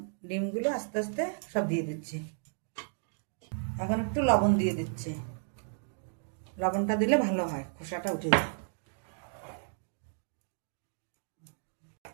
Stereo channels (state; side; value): silent; left; digital silence